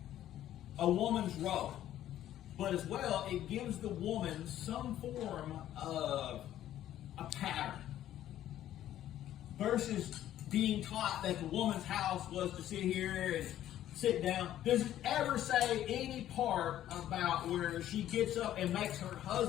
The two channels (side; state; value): right; quieter; 12.3 dB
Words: a woman's role. But as well, it gives the woman some form of a pattern. Versus being taught that the woman's house was to sit here and sit down. Does it ever say any part about where she gets up and makes her